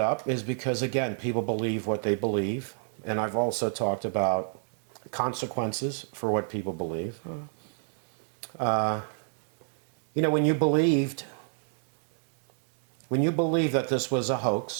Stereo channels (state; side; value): silent; left; digital silence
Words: up is because, again, people believe what they believe. And I've also talked about consequences for what people believe. You know, when you believed that this was a